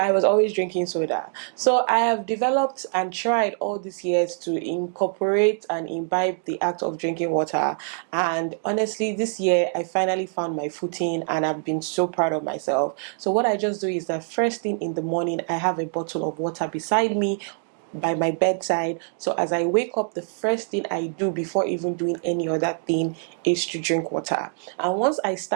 was always drinking soda. So I have developed and tried all these years to incorporate and imbibe the act of drinking water. And honestly, this year I finally found my footing and I've been so proud of myself. So what I just do is that first thing in the morning, I have a bottle of water beside me by my bedside. So as I wake up, the first thing I do before even doing any other thing is to drink water. And once I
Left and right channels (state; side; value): silent; left; 56 dB below the other